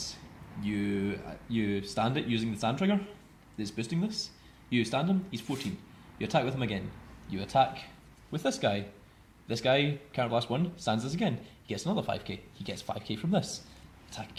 You stand it using the stand trigger that's boosting this. You stand him, he's 14. You attack with him again. You attack with this guy. This guy, counter blast 1, stands this again. He gets another 5k. He gets 5k from this. Attack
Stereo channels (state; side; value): identical; both; correlation 1.00